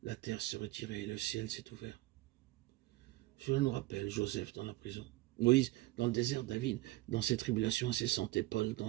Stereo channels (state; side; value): quieter; left; 18.6 dB